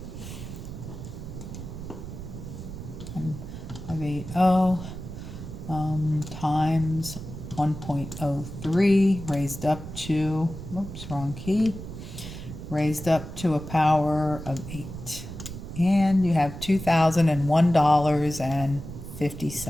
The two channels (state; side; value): noise; right; rumble, 10 dB below the sound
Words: And 580 times 1.03 raised up to, oops, wrong key, raised up to a power of 8. And you have